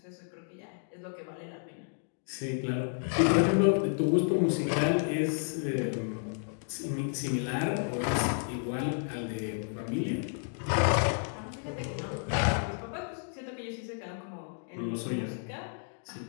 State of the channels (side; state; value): right; silent; 57 dB below the other